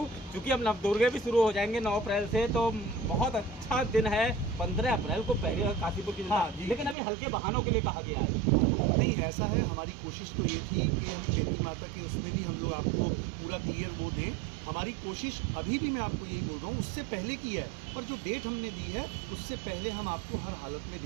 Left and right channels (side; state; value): left; drops out; at 7.0 s